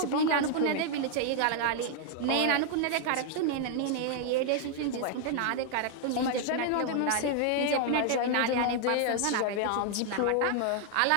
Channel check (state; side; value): different; both; correlation 0.00